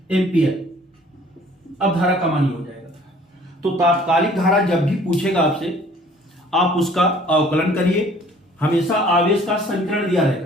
एम्पियर। अब धारा का मान हो जाएगा। तो तात्कालिक धारा जब भी पूछेगा आपसे आप उसका अवकलन करिए। हमेशा आवेश का समीकरण दिया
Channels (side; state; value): both; normal; correlation 0.54